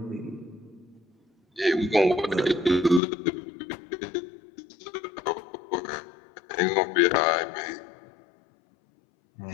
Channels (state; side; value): drops out; right; at 3.0 s